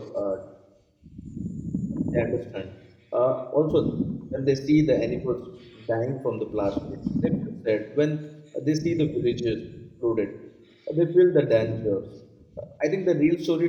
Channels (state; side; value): identical; both; correlation 1.00